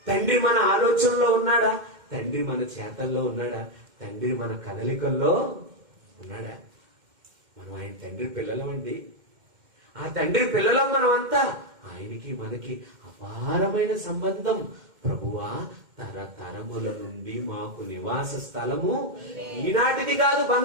తండ్రి మన ఆలోచనలో ఉన్నాడా? తండ్రి మన చేతల్లో ఉన్నాడా? తండ్రి మన కదలికల్లో ఉన్నాడా? మనం ఆయన తండ్రి పిల్లలమండి. ఆ తండ్రి పిల్లలం మనం అంతా. ఆయనకి మనకి అపారమైన సంబంధం. ప్రభువా, తరతరముల నుండి మాకు నివాస స్థలము ఈనాటిది కాదు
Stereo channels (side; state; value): left; late; 2.1 ms